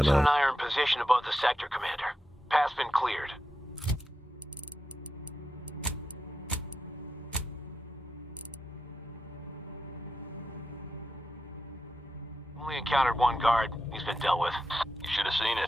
Jensen and I are in position above the sector, Commander. Path's been cleared. Only encountered one guard. He's been dealt with. You should have seen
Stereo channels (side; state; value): both; normal; correlation 0.88